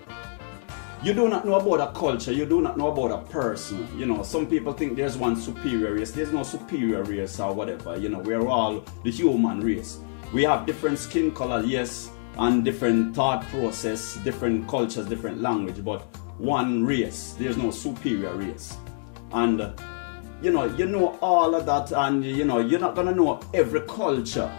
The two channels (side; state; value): right; silent; digital silence